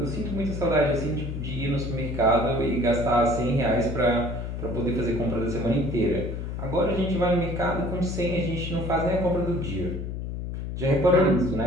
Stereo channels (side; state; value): left; noise; hum, 5 dB below the sound